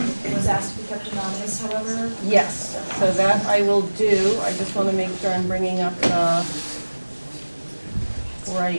asked to be kept anonymous, however. Yes, so that I will do. I just want to make sure I'm bringing up the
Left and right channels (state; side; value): inverted; both; correlation -1.00